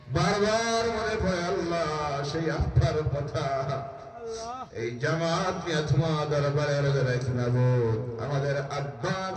বারবার মনে পড়ে আল্লাহ সেই আব্বার কথা। এই জামাত নিয়ে তোমার দরবারে রাখি মাবুদ, আমাদের আব্বা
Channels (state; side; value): identical; both; correlation 1.00